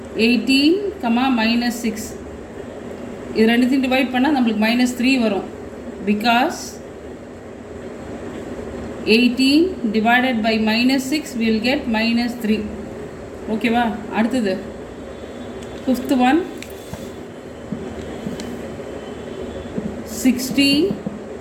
18 comma minus 6, இது ரெண்டுத்தையும் divide பண்ணால் நம்மளுக்கு minus 3 வரும் because 18 divided by minus 6 we will get minus 3. ஓகேவா? அடுத்தது fifth one 60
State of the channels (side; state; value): both; identical; correlation 1.00